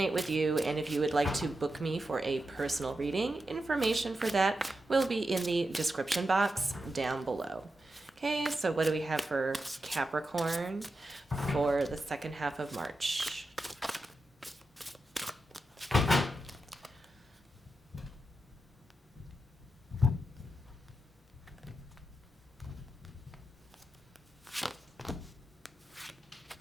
with you, and if you would like to book me for a personal reading, information for that will be in the description box down below. Okay, so what do we have for Capricorn for the second half of March?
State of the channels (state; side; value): normal; both; correlation 0.89